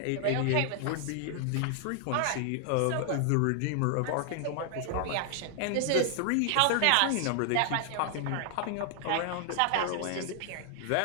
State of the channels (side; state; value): both; different; correlation 0.00